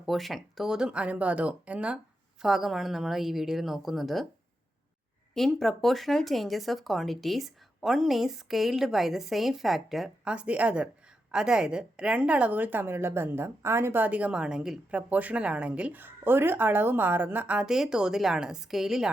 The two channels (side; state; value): both; normal; correlation 0.86